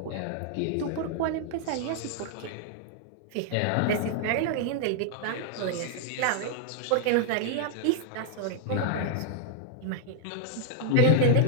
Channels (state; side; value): different; both; correlation -0.01